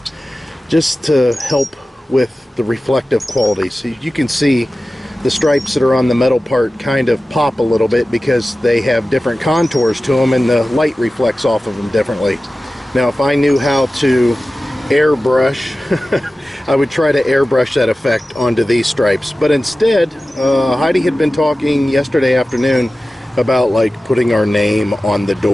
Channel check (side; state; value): both; normal; correlation 0.95